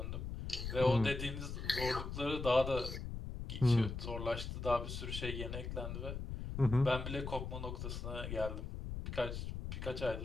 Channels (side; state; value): left; noise; rumble, 5 dB below the sound